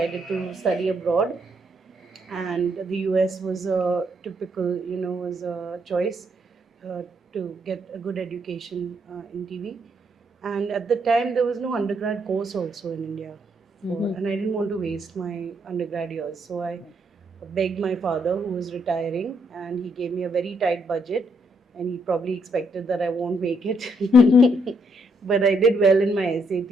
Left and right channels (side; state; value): both; normal; correlation 0.75